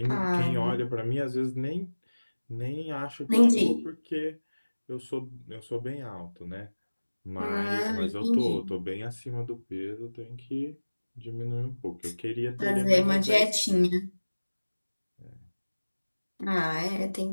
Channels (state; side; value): inverted; both; correlation -1.00